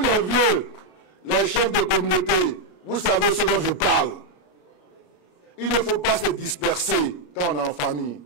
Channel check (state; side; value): late; right; 33 ms